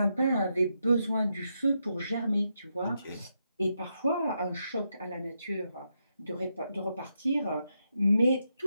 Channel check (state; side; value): inverted; both; correlation -0.83